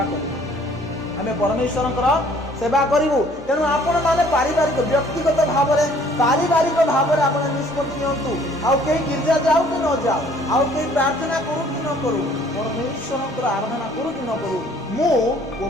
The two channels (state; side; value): normal; both; correlation 0.57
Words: करू आमे परमेश्वर सेवा करू। तेणु आपण माने पारिवारिक व्यक्तिगत भाव में पारिवारिक भाव में आप निष्पत्ति नियंतु। आउ कहीं गिरजा जाऊ कि न जाऊ, आउ कहीं प्रार्थना करू कि न करू, परमेश्वर आराधना करू कि न करू, मु ओ